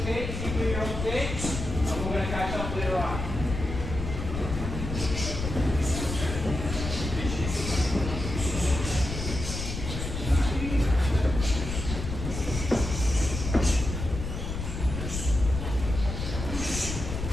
Just keep doing your own thing. And we're going to catch up later on.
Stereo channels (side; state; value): left; noise; rumble, 5 dB below the sound